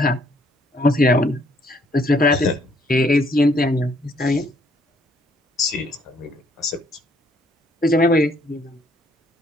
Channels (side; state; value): both; normal; correlation 0.66